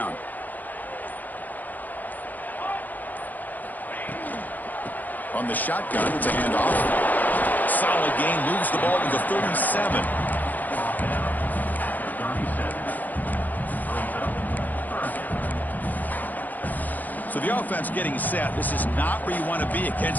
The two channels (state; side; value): late; right; 0.084 ms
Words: On the shotgun, it's a handoff. Solid gain, moves the ball to the 37. So the offense getting set. This is not where you want to be